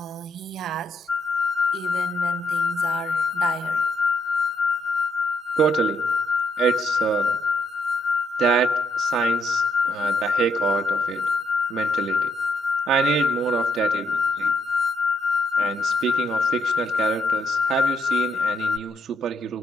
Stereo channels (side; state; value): both; normal; correlation 0.74